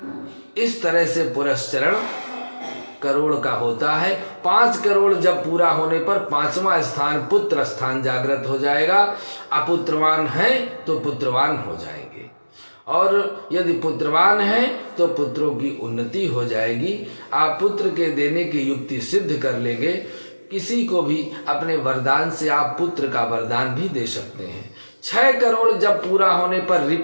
इस तरह से पुरस्चरण करोड़ का होता है। 5 करोड़ जब पूरा होने पर 5वां स्थान पुत्र स्थान जागृत हो जाएगा। अपुत्रवान है तो पुत्रवान हो जाएंगे, और यदि पुत्रवान है तो पुत्रों की उन्नति हो जाएगी। आप पुत्र के देने की युक्ति सिद्ध कर लेंगे। किसी को भी अपने वरदान से आप पुत्र का वरदान भी दे सकते हैं। 6 करोड़ जब पूरा होने पर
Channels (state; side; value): inverted; both; correlation -1.00